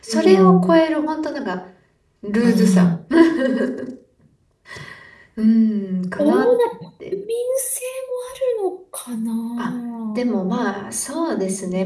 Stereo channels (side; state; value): both; identical; correlation 1.00